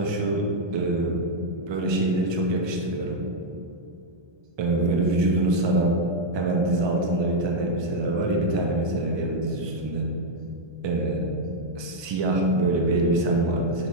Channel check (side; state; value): left; late; 1.2 ms